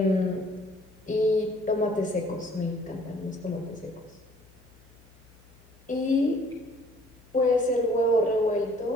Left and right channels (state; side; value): noise; left; hum, 27 dB below the sound